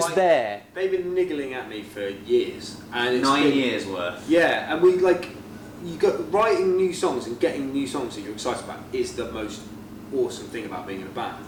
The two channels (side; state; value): both; identical; correlation 1.00